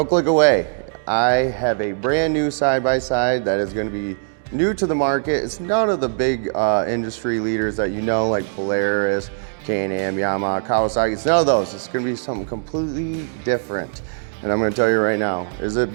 click away. I have a brand new side-by-side that is going to be new to the market. It's none of the big industry leaders that you know, like Polaris, Can-Am, Yamaha, Kawasaki. It's none of those. It's going to be something completely different. And I'm going to tell you right now, is it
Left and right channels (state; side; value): silent; left; digital silence